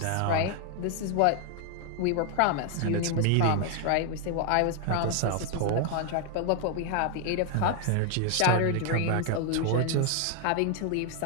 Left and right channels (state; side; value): different; both; correlation 0.00